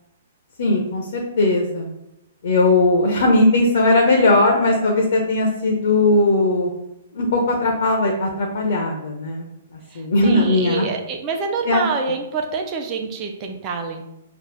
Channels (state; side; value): inverted; both; correlation -0.54